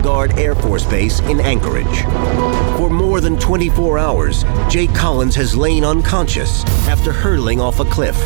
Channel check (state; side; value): silent; left; digital silence